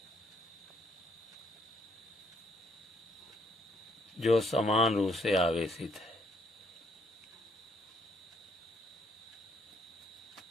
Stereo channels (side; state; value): both; normal; correlation 0.69